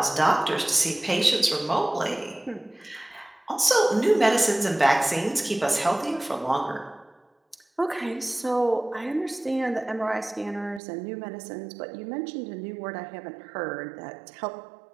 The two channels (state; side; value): drops out; left; at 10.8 s